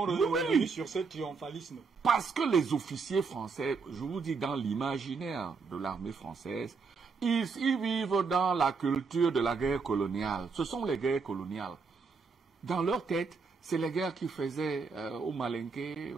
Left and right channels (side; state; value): left; quieter; 4.9 dB